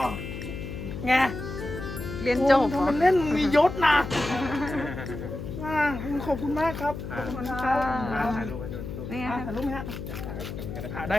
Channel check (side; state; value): left; noise; hum, 7 dB below the sound